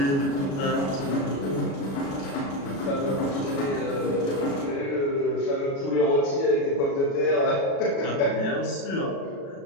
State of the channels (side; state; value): right; late; 36 ms